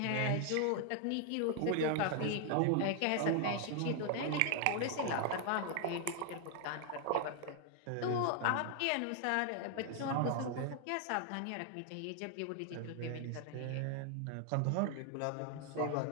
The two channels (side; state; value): both; different; correlation 0.00